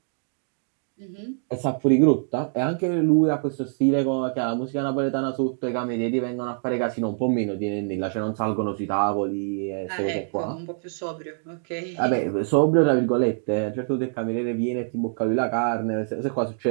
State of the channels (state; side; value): silent; left; 62 dB below the other